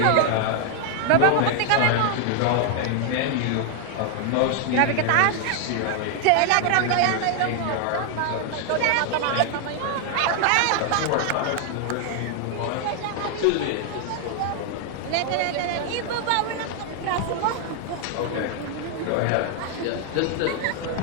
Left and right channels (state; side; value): different; both; correlation 0.00